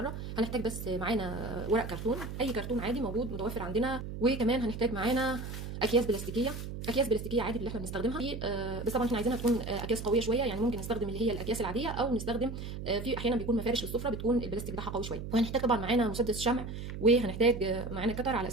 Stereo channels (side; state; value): right; noise; hum, 7 dB below the sound